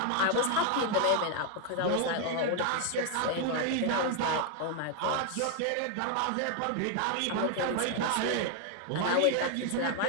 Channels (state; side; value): different; both; correlation 0.00